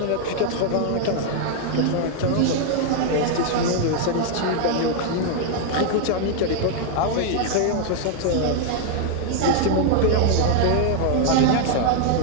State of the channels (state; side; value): different; both; correlation 0.00